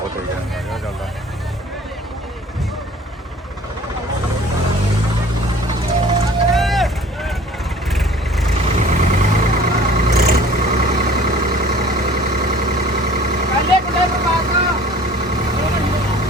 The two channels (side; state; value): both; normal; correlation 0.49